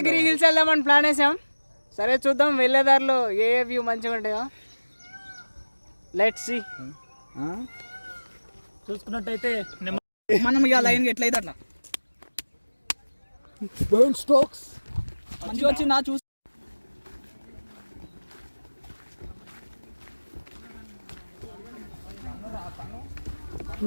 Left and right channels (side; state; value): both; inverted; correlation -1.00